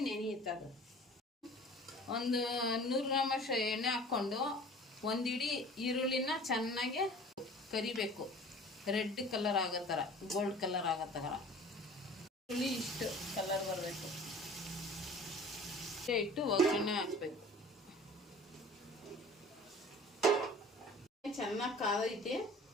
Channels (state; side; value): normal; both; correlation 0.44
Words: ನೆನೆಯುತ್ತದೆ. ಒಂದು 100 ಗ್ರಾಮಷ್ಟು ಎಣ್ಣೆ ಹಾಕ್ಕೊಂಡು 1 ಹಿಡಿ ಈರುಳ್ಳಿನ ಚೆನ್ನಾಗಿ ಕರಿಬೇಕು, ರೆಡ್ ಕಲರ್ ಆಗೋ ಥರ, ಗೋಲ್ಡ್ ಕಲರ್ ಆಗೋ ಥರ ಈರುಳ್ಳಿ ಇಷ್ಟು ಕಲರ್ ಬರಬೇಕು. ಇಟ್ಟು ಒಗ್ಗರಣೆ ಹಾಕಬೇಕು. ಚೆನ್ನಾಗಿ ಕಾದೈತೆ,